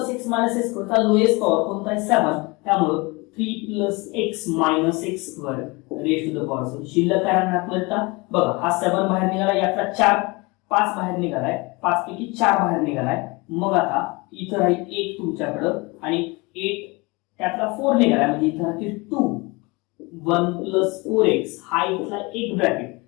x - x² चा लोएस्ट पॉवर कोणता आहे? 7. त्यामुळे 3 + x - x² raise to the power 7. शिल्लक काय राहणार आता? बघा हा 7 बाहेर निघाला, यातला 5 बाहेर निघालाय, 5 पैकी 4 बाहेर निघालाय. मग आता इथं राहील 1 तुमच्याकडं आणि 8 त्यातला 4 निघालाय, म्हणजे इथं राहतील 2. 1 + 4x हा इथला एक ब्रॅकेट.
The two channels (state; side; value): quieter; right; 26.0 dB